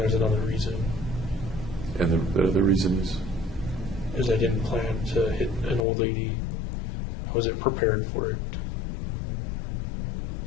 another reason. And the other reason Is I didn't plan to hit an old lady. I wasn't prepared for it.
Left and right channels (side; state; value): right; drops out; at 5.9 s